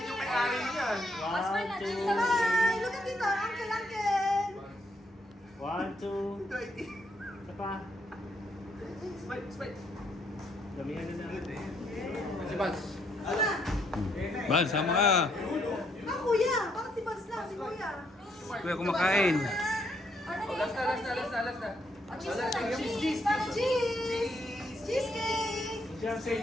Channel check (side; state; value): both; normal; correlation 0.73